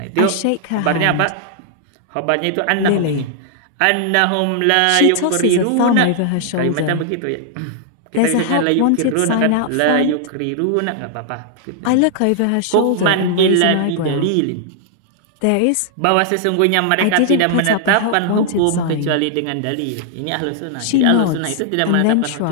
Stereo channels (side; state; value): both; different; correlation -0.01